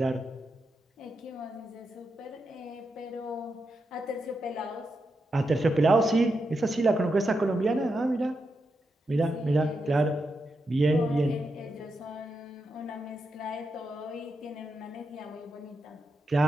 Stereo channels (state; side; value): normal; both; correlation 0.85